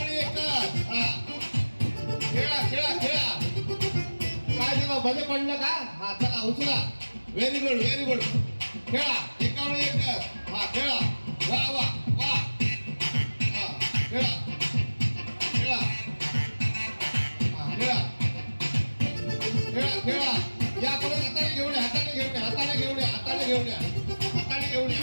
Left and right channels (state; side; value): inverted; both; correlation -1.00